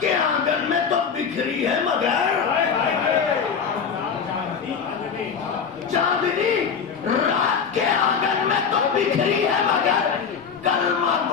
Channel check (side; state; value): right; quieter; 6.4 dB